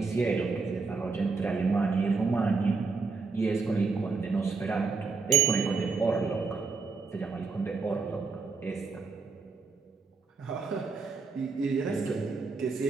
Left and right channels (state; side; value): quieter; left; 4.4 dB